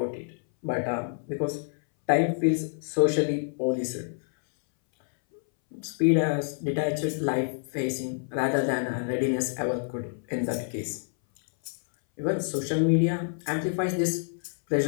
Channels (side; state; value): right; silent; 60 dB below the other